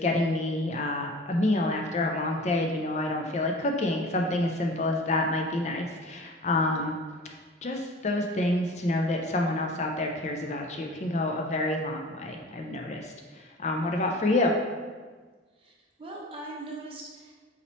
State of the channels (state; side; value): normal; both; correlation 0.40